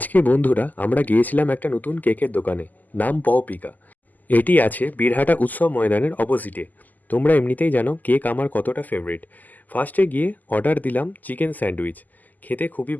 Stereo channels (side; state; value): right; late; 0.083 ms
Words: বন্ধুরা আমরা গিয়েছিলাম একটা নতুন কেকের দোকানে, নাম পপিকা। এটি আছে বীরহাটা উৎসব ময়দানের অপোজিটে। তোমরা এমনিতেই জানো কেক আমার কতটা ফেভারিট। ফার্স্টে গিয়ে অর্ডার দিলাম চিকেন স্যান্ডউইচ। খেতে খুবই